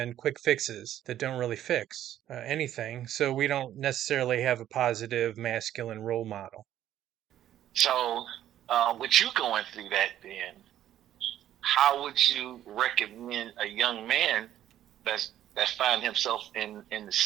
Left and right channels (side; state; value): left; quieter; 11.9 dB